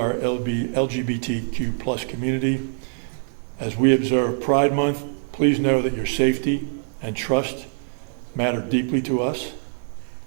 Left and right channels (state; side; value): silent; left; digital silence